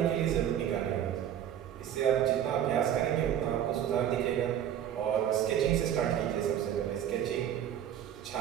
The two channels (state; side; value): quieter; left; 10.3 dB